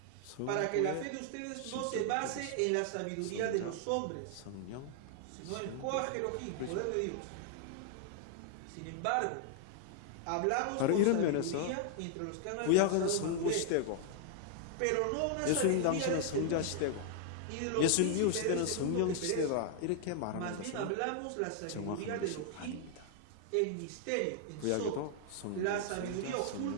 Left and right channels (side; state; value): both; different; correlation 0.00